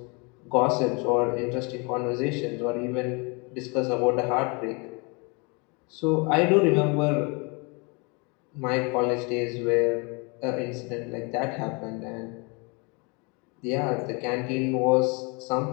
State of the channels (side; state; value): right; quieter; 30.9 dB